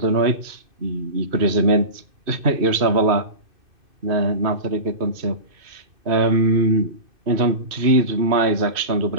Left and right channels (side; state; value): left; late; 2.6 ms